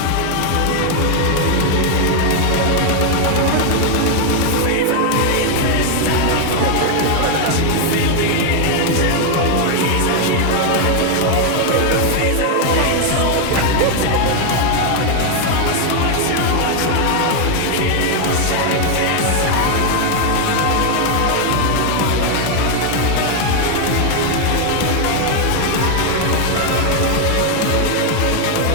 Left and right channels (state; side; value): different; both; correlation 0.01